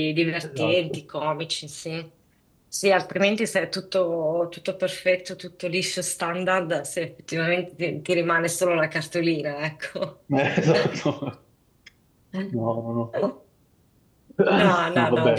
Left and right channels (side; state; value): both; identical; correlation 1.00